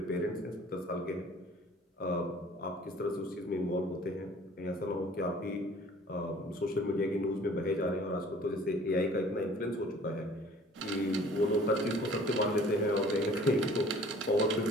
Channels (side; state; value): both; normal; correlation 0.51